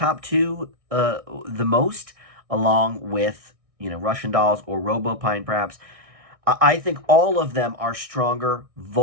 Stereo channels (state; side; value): late; left; 1.6 ms